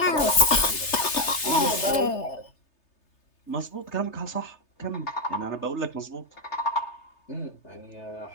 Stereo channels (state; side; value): late; right; 3.3 ms